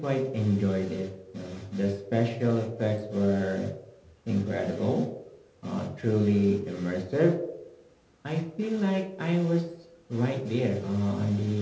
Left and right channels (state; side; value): identical; both; correlation 1.00